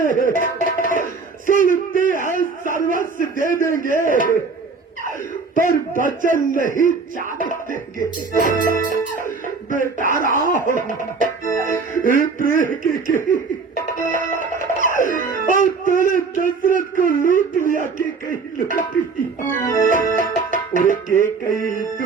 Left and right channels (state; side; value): quieter; left; 4.5 dB